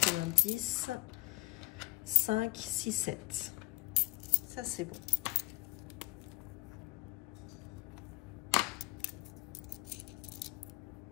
5, 6, 7. Ça, c'est bon.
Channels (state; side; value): quieter; right; 21.6 dB